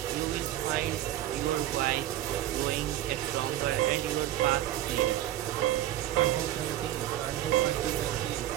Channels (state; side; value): quieter; left; 13.2 dB